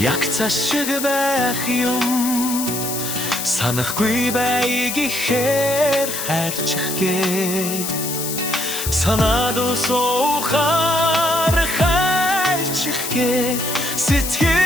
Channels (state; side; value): noise; left; hiss, 4 dB below the sound